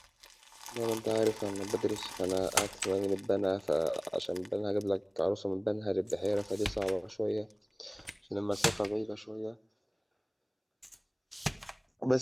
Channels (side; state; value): both; identical; correlation 1.00